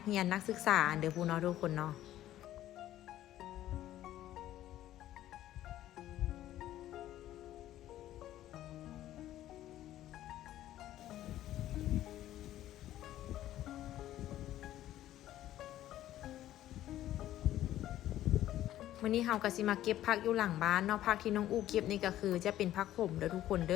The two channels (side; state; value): right; quieter; 13.3 dB